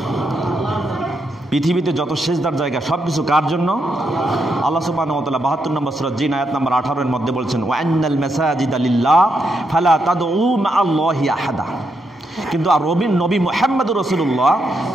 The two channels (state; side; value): normal; both; correlation 0.81